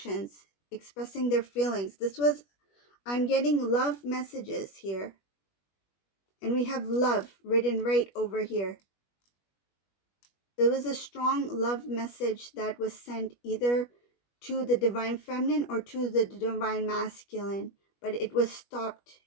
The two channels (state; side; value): late; right; 21 ms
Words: expressing their feelings. I'm getting love messages here. And we have love written right over here. There was a strong love message that was sent either to the divine feminine or to the divine masculine, but it was stopped.